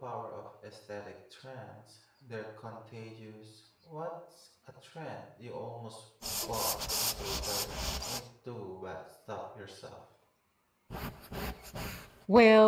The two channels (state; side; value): identical; both; correlation 1.00